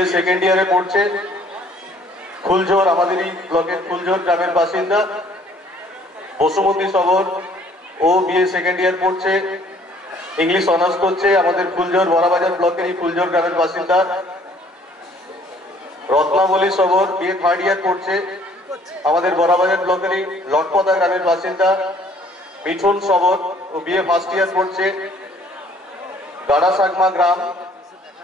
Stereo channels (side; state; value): both; normal; correlation 0.59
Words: সেকেন্ড ইয়ারে পড়ছে, ফুলঝোর, আমাদেরই ব্লকের ফুলঝোর গ্রামের বাসিন্দা। বসুমতী সবর ও বিএ সেকেন্ড ইয়ার পড়ছে, ইংলিশ অনার্স করছে, আমাদের ফুলঝোর বড়াবাজার ব্লকেরই ফুলঝোর গ্রামের বাসিন্দা। রত্নাবলী সবর বিএ থার্ড ইয়ার পড়ছে, আমাদের বড়াবাজার ব্লকেরই লটপদা গ্রামের বাসিন্দা। মিঠুন সবর ও বিএ ফার্স্ট ইয়ার পড়ছে, গাড়াসাগমা গ্রাম,